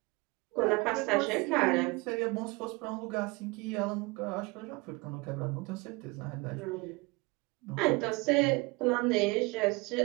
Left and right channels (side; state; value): left; quieter; 25.4 dB